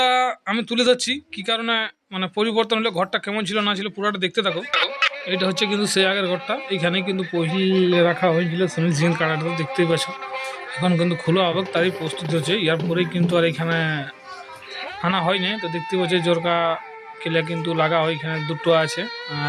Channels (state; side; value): identical; both; correlation 1.00